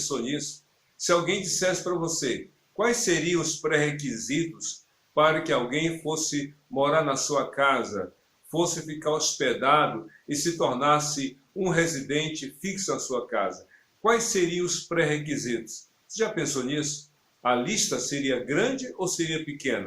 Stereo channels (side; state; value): both; identical; correlation 1.00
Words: nisso? Se alguém dissesse para você quais seriam os pré-requisitos para que alguém fosse morar na sua casa, fosse ficar hospedado e se tornasse um residente fixo na sua casa, quais seriam os pré-requisitos? Você já pensou nisso? A lista seria grande ou seria